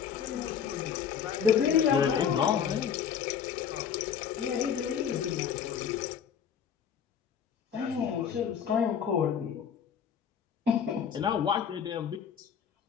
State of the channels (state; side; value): quieter; right; 7.7 dB